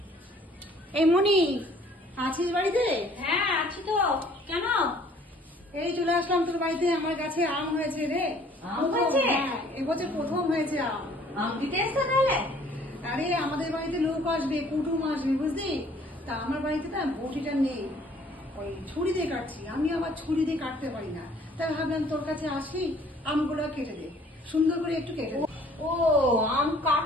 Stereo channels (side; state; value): both; normal; correlation 0.57